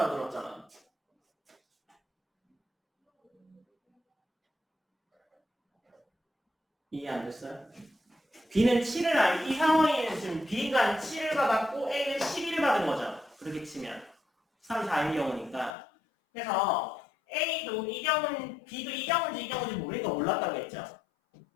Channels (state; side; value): drops out; right; at 15.7 s